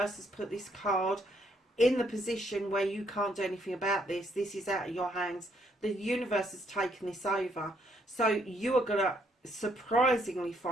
has put this card in the position where you can't do anything about this. This is out of your hands. The universe has taken this over. So you are going to surprisingly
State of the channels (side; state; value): both; normal; correlation 0.71